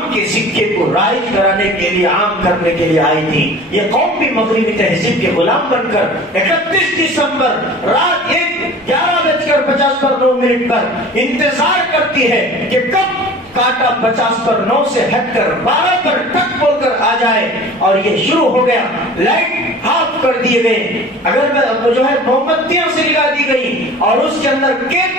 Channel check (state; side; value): normal; both; correlation 0.41